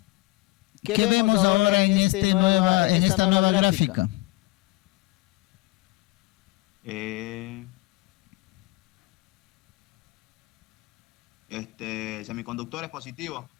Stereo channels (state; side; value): quieter; right; 22.3 dB